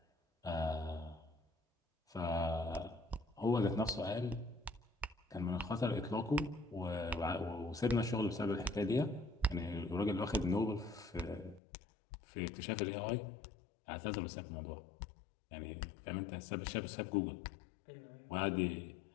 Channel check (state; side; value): drops out; right; at 11.6 s